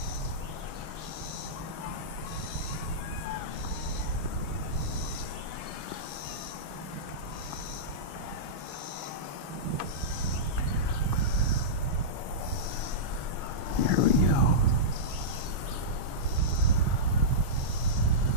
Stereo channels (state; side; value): late; left; 6.9 ms